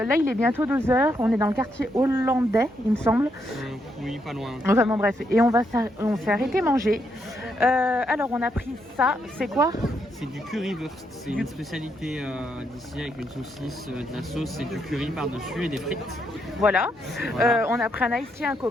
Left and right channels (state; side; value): normal; both; correlation 0.78